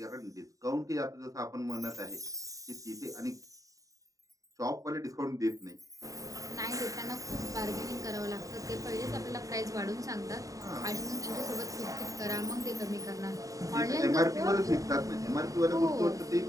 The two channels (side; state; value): left; late; 0.16 ms